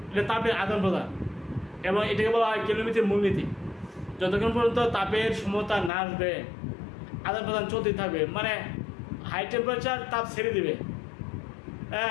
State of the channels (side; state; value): right; drops out; at 5.9 s